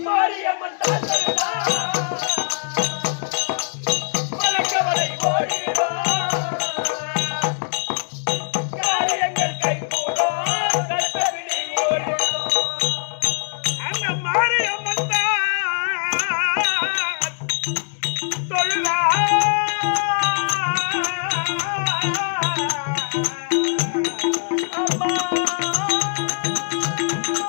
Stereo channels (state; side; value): silent; right; digital silence